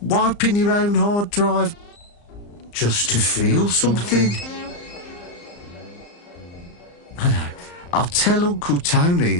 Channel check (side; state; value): right; late; 34 ms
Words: wiping your own hard drive just to feel something. I know. I'll tell Uncle Tony